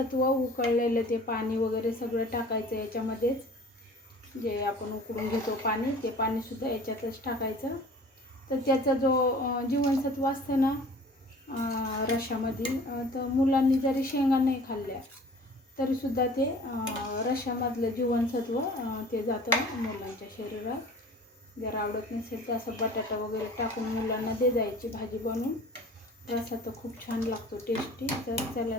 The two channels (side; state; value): both; normal; correlation 0.46